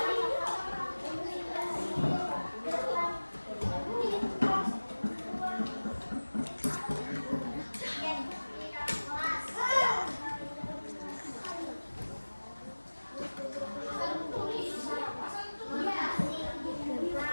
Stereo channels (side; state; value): both; inverted; correlation -1.00